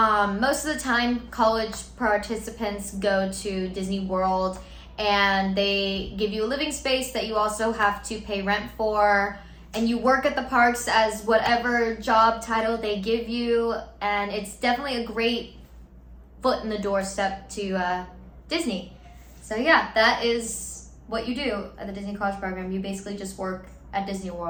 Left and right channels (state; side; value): identical; both; correlation 1.00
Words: of the time, college participants go to Disney World, and they give you a living space that you also have to pay rent for, and you work at the parks as whatever job title they give you, and it's definitely a great foot in the doorstep to Disney. So yeah, that is what you do at the Disney College Program. You basically just work at Disney